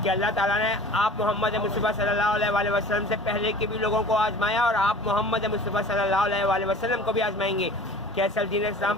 کہ اللہ تعالیٰ نے آپ محمد مصطفیٰ صلی اللہ علیہ وآلہ وسلم سے پہلے کے بھی لوگوں کو آزمایا، اور آپ محمد مصطفیٰ صلی اللہ علیہ وآلہ وسلم کو بھی آزمائیں گے کہ اصل دین اسلام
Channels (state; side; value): normal; both; correlation 0.42